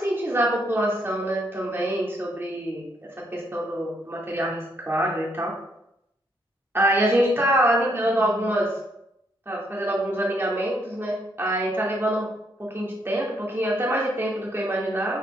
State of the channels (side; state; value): both; normal; correlation 0.73